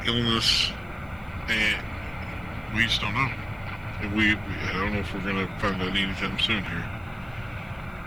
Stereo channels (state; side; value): noise; left; hiss, 30 dB below the sound